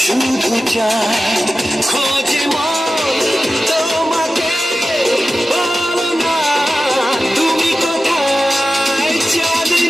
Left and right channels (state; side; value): normal; both; correlation 0.94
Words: শুধু চায়। খোঁজে মন তোমাকে, বলো না তুমি কোথায়?